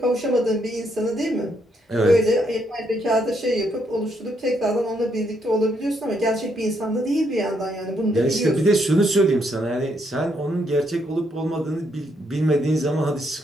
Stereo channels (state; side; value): normal; both; correlation 0.75